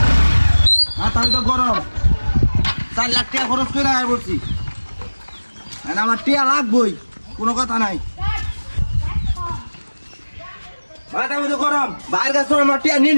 মাথা তো গরম, 4 লাখ টাকা খরচ করে আয় বলছি। আর আমার টাকা লাগবই, কোনো কথা নাই। মাথা তো গরম, বাইরের কাছে আমার টাকা নিয়ে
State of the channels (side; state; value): both; inverted; correlation -1.00